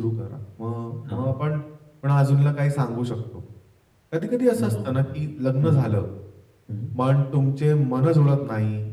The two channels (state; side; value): identical; both; correlation 1.00